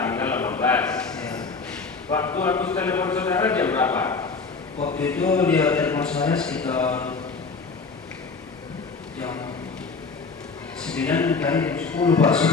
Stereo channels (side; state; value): right; quieter; 4.5 dB